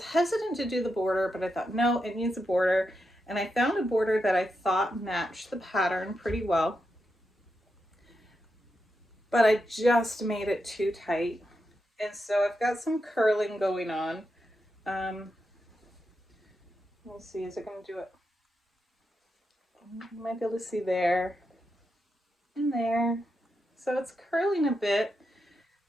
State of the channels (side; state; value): both; normal; correlation 0.86